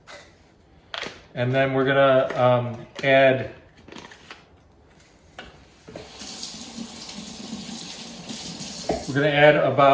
And then we're gonna add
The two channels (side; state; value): both; identical; correlation 1.00